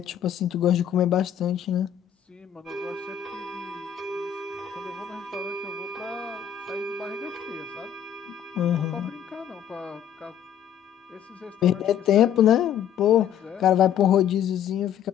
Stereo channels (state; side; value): quieter; right; 9.4 dB